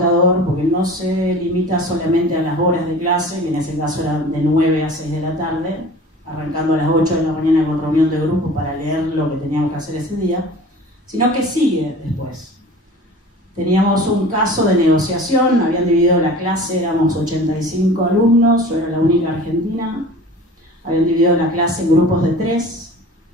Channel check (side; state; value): both; normal; correlation 0.41